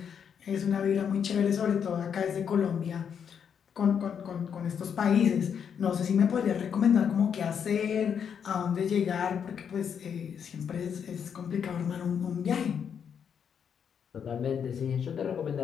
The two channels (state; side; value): quieter; right; 7.6 dB